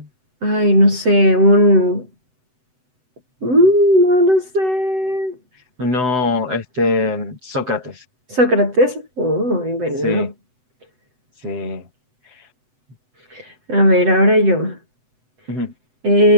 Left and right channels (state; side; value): late; left; 7.9 ms